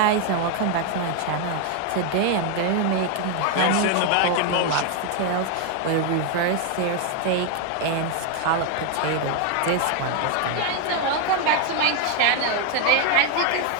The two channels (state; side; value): different; both; correlation 0.01